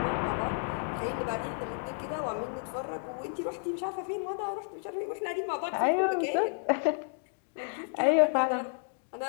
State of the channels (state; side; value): silent; right; 57 dB below the other